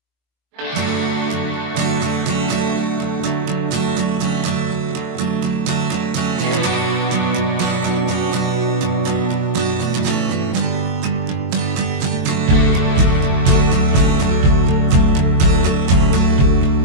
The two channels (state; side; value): late; left; 23 ms